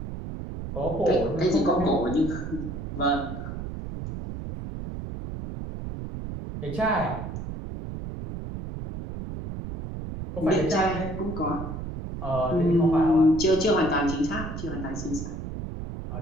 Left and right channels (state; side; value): noise; right; rumble, 7 dB below the sound